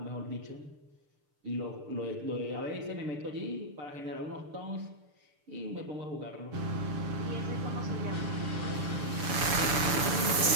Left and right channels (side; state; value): left; late; 6.8 ms